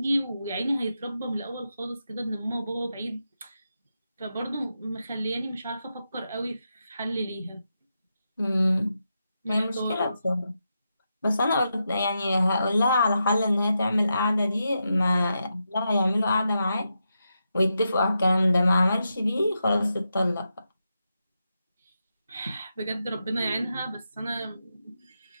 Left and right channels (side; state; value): both; inverted; correlation -0.86